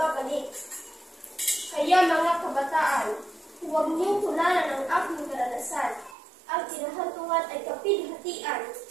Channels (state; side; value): drops out; left; at 6.2 s